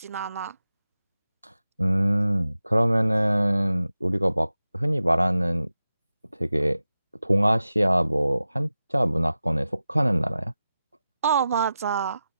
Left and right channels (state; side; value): inverted; both; correlation -0.93